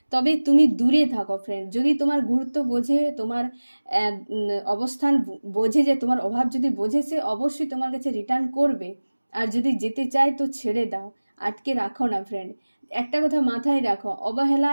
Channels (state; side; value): inverted; both; correlation -1.00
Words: তবে তুমি দূরে থাকো ফ্রেন্ড। যদি তোমার গুরুত্ব বোঝে, তোমার অবস্থান বোঝে, যে তোমার অভাব যদি বোঝে, সে অবশ্যই তোমার কাছে রিটার্ন করবে। আর যদি যেতে চায় তো ছেড়ে দাও, আটকে রাখো না ফ্রেন্ড। একটা কথা মাথায় রাখো, অবহেলা